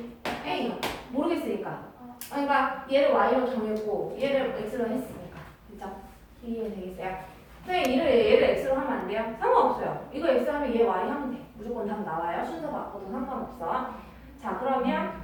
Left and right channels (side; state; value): both; identical; correlation 1.00